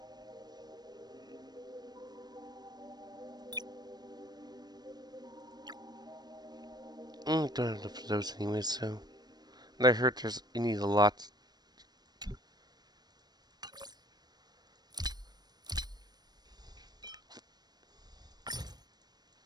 Don't have enough of those anyways, so. And I heard you need a lot.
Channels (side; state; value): left; late; 0.19 ms